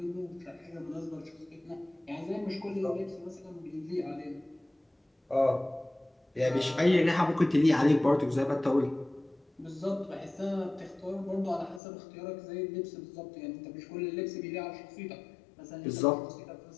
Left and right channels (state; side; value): drops out; right; at 11.8 s